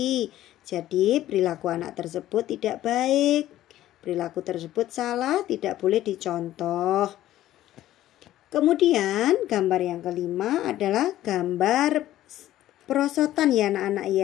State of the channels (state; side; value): quieter; right; 13.8 dB